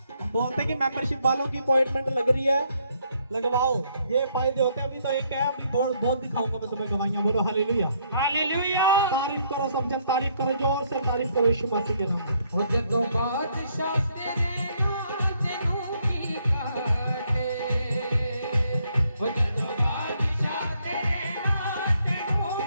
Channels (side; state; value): both; inverted; correlation -0.70